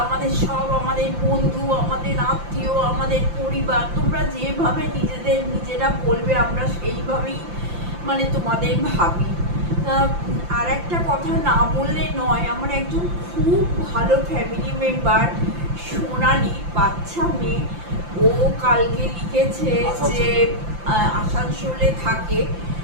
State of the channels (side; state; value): left; late; 5.8 ms